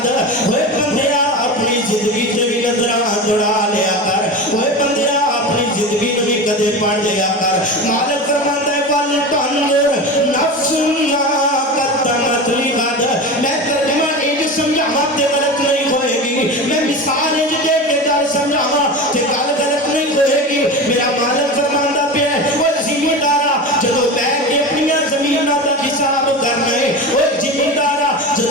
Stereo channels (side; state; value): both; normal; correlation 0.27